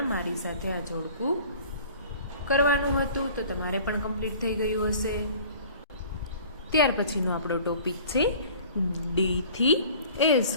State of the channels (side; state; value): both; inverted; correlation -0.48